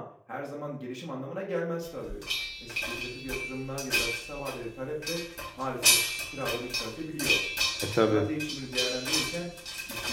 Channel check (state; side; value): identical; both; correlation 1.00